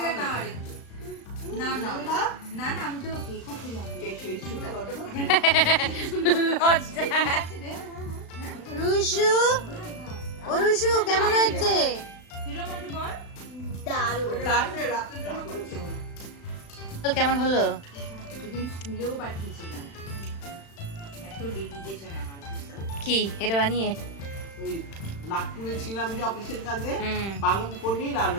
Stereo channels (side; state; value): right; late; 36 ms